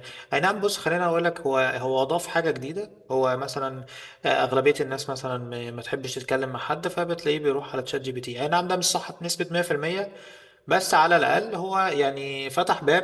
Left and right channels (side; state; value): both; identical; correlation 1.00